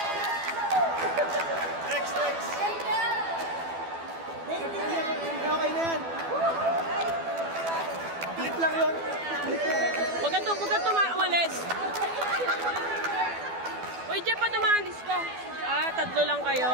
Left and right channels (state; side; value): late; left; 12 ms